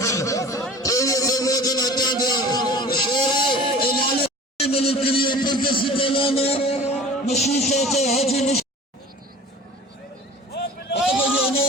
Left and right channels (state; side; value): normal; both; correlation 0.41